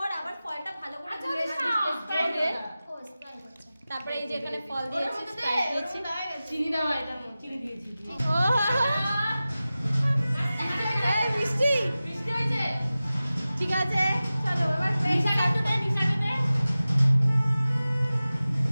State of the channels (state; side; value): inverted; both; correlation -0.96